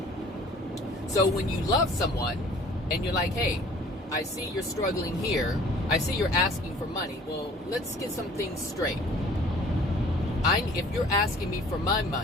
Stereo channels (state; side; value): normal; both; correlation 0.52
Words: So when you love someone and you're like, hey, I see you're struggling here. I see you're asking for money. Well, let's get some things straight. If you're asking me for my